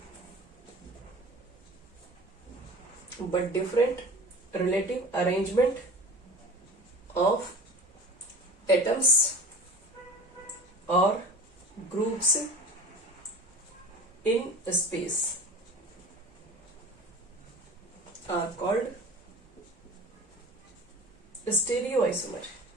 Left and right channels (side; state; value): both; normal; correlation 0.37